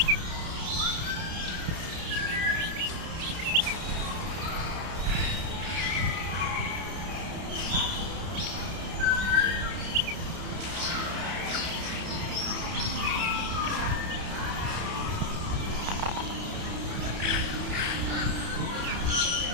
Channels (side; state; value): left; late; 31 ms